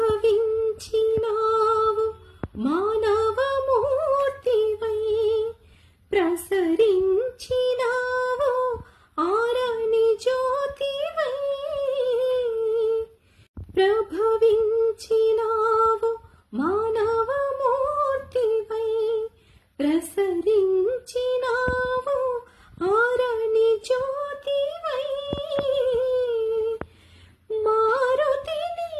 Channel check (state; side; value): identical; both; correlation 1.00